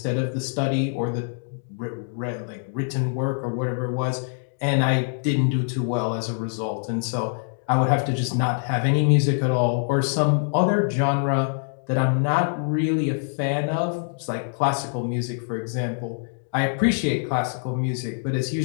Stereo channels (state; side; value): silent; right; digital silence